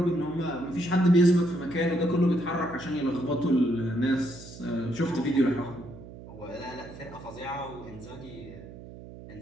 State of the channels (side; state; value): right; noise; hum, 15 dB below the sound